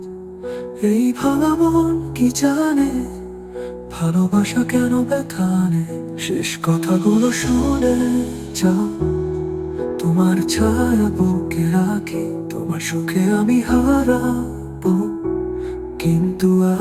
এই ভাঙা মন কি জানে, ভালোবাসা কেন ব্যথা নেই। শেষ কথাগুলো শুনে যাও, তোমার ছায়া বুকে রাখি, তোমার সুখে আমি হারাবো, কিন্তু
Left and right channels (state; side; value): identical; both; correlation 1.00